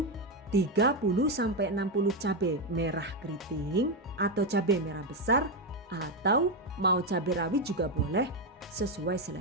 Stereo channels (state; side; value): normal; both; correlation 0.07